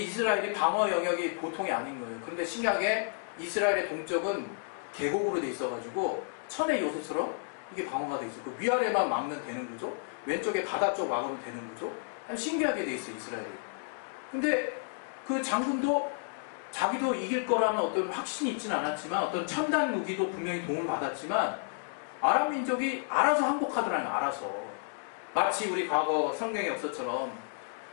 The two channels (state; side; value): silent; right; digital silence